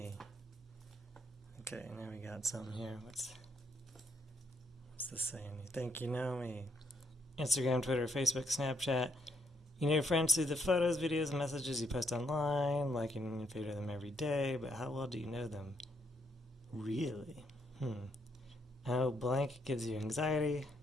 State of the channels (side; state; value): both; normal; correlation 0.75